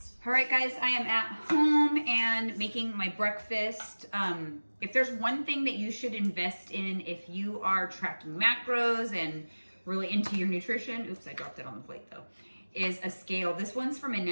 All right, guys, I am at home and making my breakfast. If there's one thing that you should invest in if you are tracking macros and really into your nutrition, oops, I dropped it on the plate though, is a scale. This one's from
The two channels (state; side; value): inverted; both; correlation -1.00